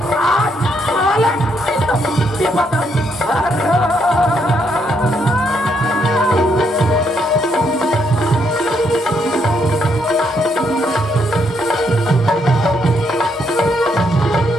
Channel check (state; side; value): normal; both; correlation 0.75